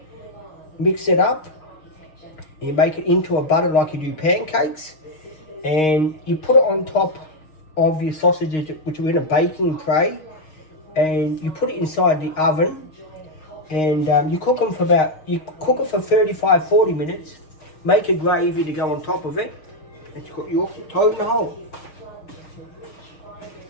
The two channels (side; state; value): right; late; 6.4 ms